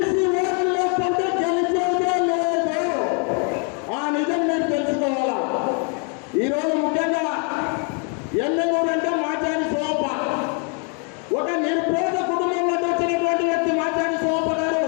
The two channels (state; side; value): quieter; right; 38.3 dB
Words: ఓట్లలో కొంటే గెలిచేదే లేదు. ఆ నిజం మీరు తెలుసుకోవాలా. ఈరోజు ముఖ్యంగా ఎమ్మెల్యేలు అంటే మాచాని సోమప్ప, ఒక నిరుపేద కుటుంబంలో వచ్చినటువంటి వ్యక్తి మాచాని సోమప్ప గారు.